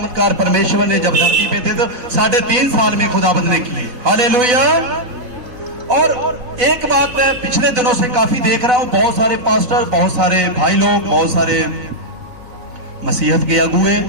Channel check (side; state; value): left; late; 4.1 ms